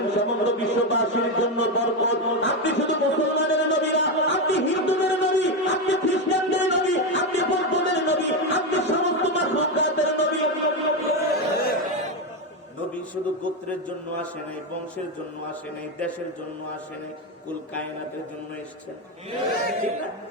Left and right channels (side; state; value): both; normal; correlation 0.11